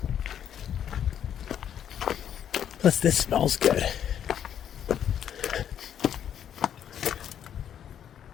Plus this smells good.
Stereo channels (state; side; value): quieter; right; 9.5 dB